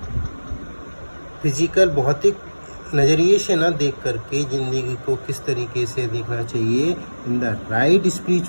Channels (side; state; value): both; inverted; correlation -1.00